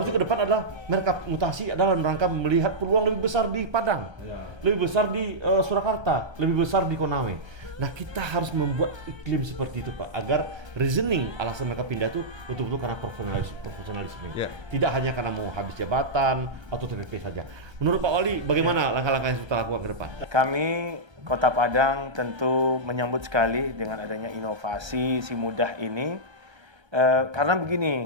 ke depan adalah mereka mutasi adalah rangka melihat peluang lebih besar di Padang, lebih besar di Surakarta, lebih besar di Konawe. Nah, kita harus membuat iklim seperti itu Pak, agar reasoning alasan mereka pindah itu betul-betul karena profesionalisme. Tidak hanya karena mau habis jabatan atau TPP saja. Menurut Pak Wali, bagaimana langkah-langkah yang kita lakukan ke depan? Kami Kota Padang tentu menyambut sekali dengan adanya inovasi si mudah ini, karena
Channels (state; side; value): late; left; 1.3 ms